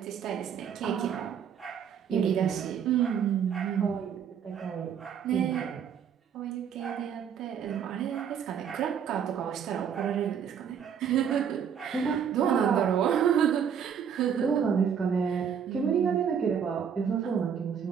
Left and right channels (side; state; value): left; quieter; 7.8 dB